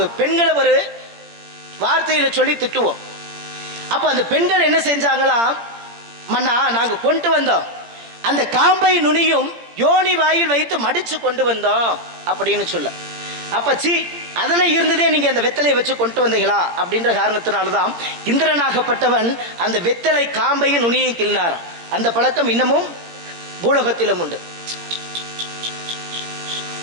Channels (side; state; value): left; late; 17 ms